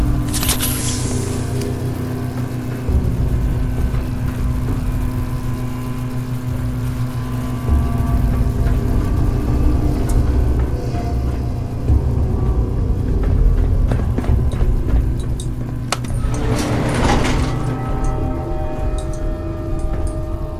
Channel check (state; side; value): identical; both; correlation 1.00